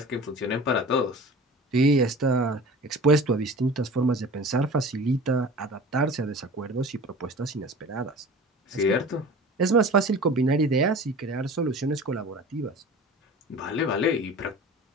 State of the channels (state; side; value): normal; both; correlation 0.40